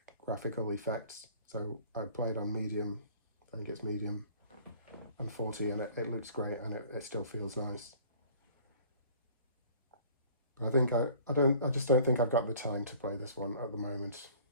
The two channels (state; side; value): inverted; both; correlation -0.50